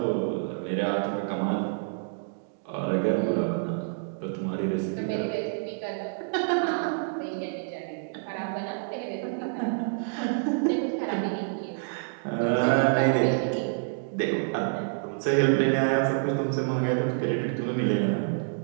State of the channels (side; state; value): left; silent; digital silence